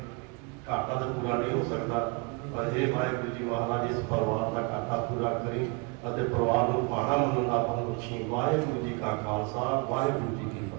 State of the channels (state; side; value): quieter; left; 30.5 dB